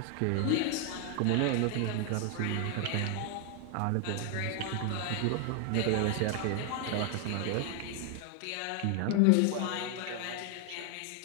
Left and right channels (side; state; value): both; different; correlation 0.00